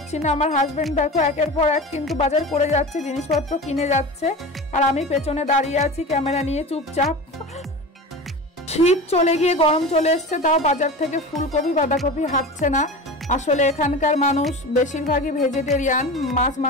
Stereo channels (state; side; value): normal; both; correlation 0.31